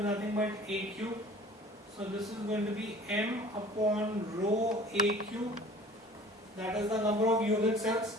nothing but A cube. So this is going to be m upon rho A cube, that is the number of unit cells.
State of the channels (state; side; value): normal; both; correlation 0.47